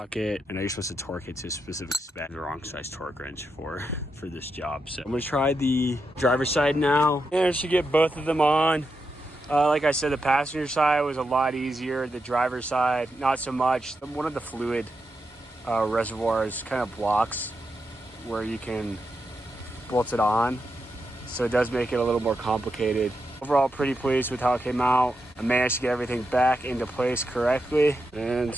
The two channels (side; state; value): both; normal; correlation 0.85